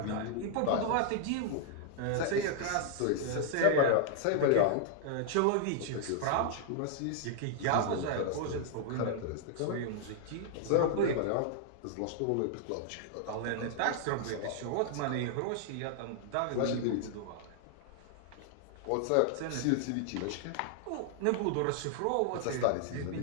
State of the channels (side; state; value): both; different; correlation 0.00